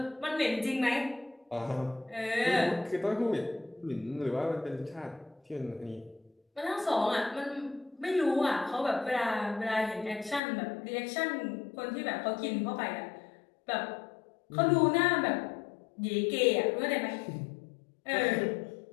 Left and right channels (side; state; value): right; drops out; at 10.4 s